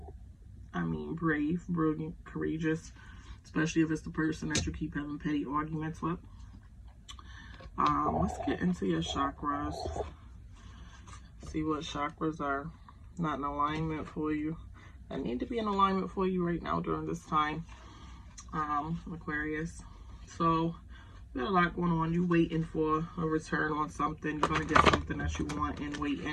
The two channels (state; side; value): identical; both; correlation 1.00